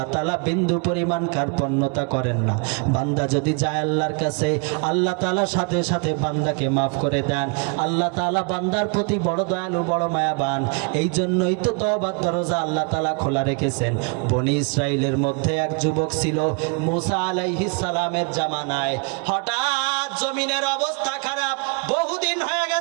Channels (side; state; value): left; quieter; 35.3 dB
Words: তাআলা বিন্দু পরিমাণ কার্পণ্যতা করেন না। বান্দা যদি যায় আল্লাহর কাছে, আল্লাহ তাআলা সাথে সাথে বান্দাকে মাফ করে দেন। আল্লাহ তাআলা বান্দার প্রতি বড় দয়ালু, বড় মায়াবান। এই জন্যই তো তওবার দরজা আল্লাহ তাআলা খোলা রেখেছেন। বনি ইসরাইলের মধ্যে এক যুবক ছিল মুসা আলাইহিস সালামের জামানায়। হঠাৎ জমিনের অবস্থা খারাপ, বহুদিন হয়ে